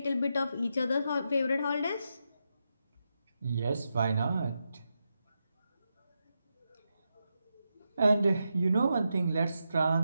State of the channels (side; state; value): both; inverted; correlation -0.86